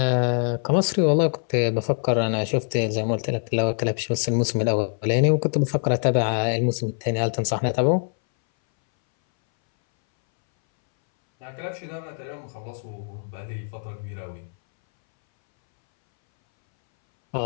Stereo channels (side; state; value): right; silent; 61 dB below the other